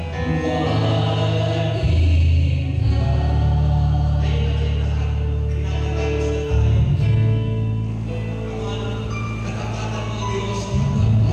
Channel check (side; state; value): both; identical; correlation 1.00